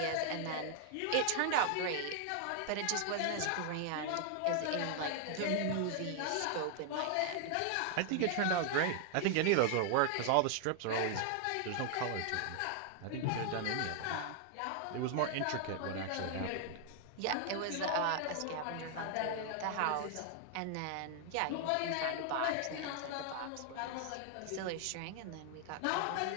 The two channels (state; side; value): different; both; correlation 0.00